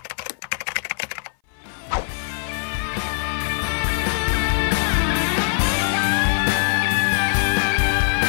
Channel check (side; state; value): right; silent; 60 dB below the other